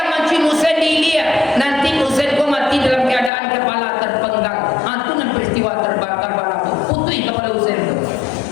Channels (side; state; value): right; drops out; at 3.3 s